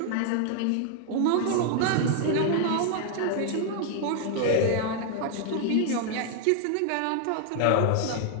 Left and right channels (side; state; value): both; different; correlation 0.00